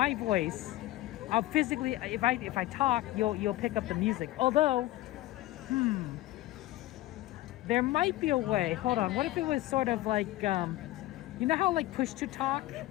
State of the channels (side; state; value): right; quieter; 16.8 dB